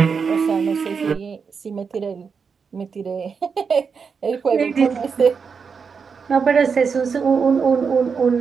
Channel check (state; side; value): quieter; left; 5.8 dB